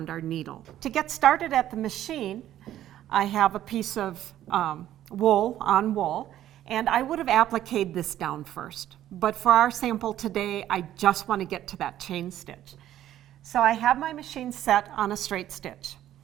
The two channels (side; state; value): left; quieter; 12.3 dB